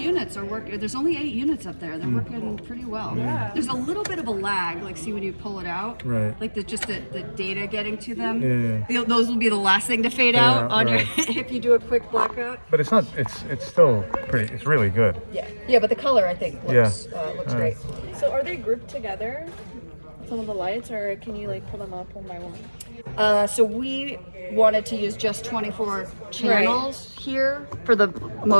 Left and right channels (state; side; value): inverted; both; correlation -1.00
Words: are working. There's only 8 units up there. They're working pretty well. There's a little bit of a lag, like see when you pull it out, Right. like the data getting to them. Yeah. Those will be the last thing to fade out on your if you do a quick blackout. But it's not, it's still pretty, it's really good. Yeah, but the color I think looks great. So are they grouped together, some of the lights, or can you like pull them up one by one? So we wanted to use just 24 channels here for the